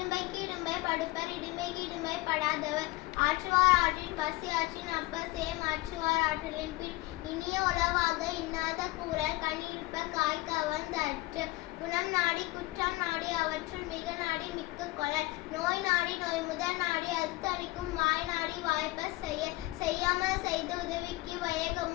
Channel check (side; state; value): right; quieter; 19.9 dB